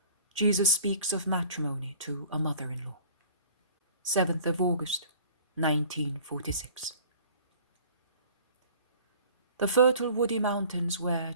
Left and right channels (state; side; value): inverted; both; correlation -0.49